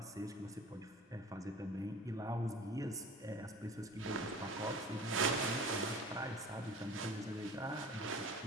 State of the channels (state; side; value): normal; both; correlation 0.41